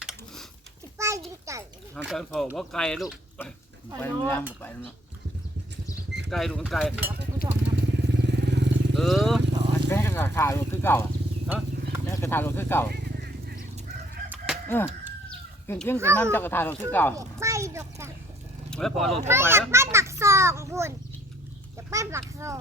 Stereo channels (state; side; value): normal; both; correlation 0.63